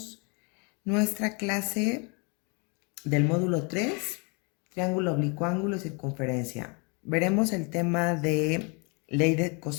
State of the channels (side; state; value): right; quieter; 32.8 dB